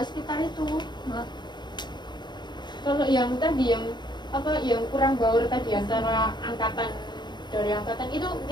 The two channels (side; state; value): right; late; 0.21 ms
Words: sekitar itu Mbak. Kalau yang tadi yang kurang baur tadi antara dari angkatan itu